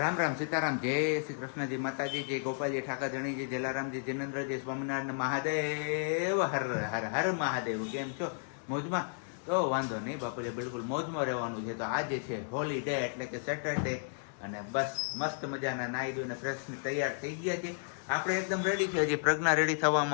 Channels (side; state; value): right; silent; 56 dB below the other